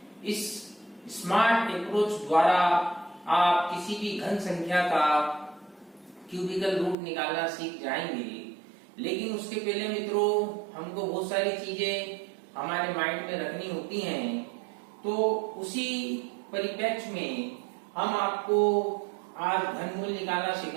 इस स्मार्ट अप्रोच द्वारा आप किसी भी घन संख्या का क्यूबिकल रूट निकालना सीख जाएंगे। लेकिन उसके पहले मित्रों, हमको बहुत सारी चीजें हमारे माइंड में रखनी होती हैं। तो उसी परिप्रेक्ष्य में हम आपको आज घनमूल निकालना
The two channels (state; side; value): drops out; left; at 7.0 s